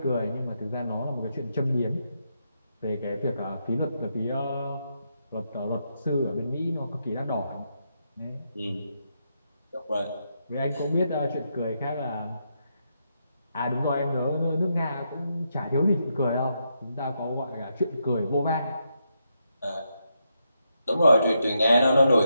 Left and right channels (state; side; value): inverted; both; correlation -0.81